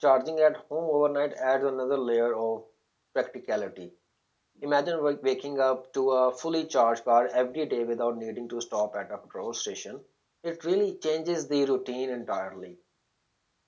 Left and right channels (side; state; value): both; identical; correlation 1.00